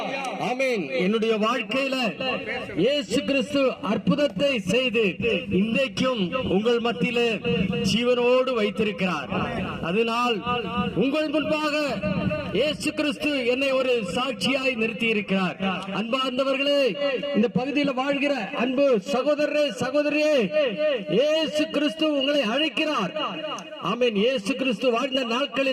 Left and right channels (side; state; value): both; identical; correlation 1.00